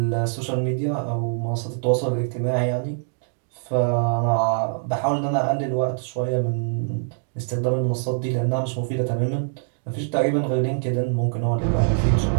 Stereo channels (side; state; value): left; silent; digital silence